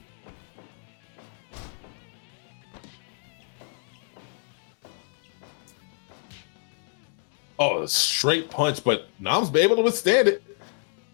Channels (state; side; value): silent; right; 59 dB below the other